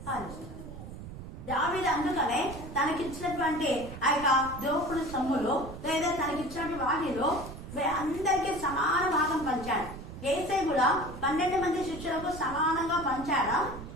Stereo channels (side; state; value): right; noise; rumble, 12 dB below the sound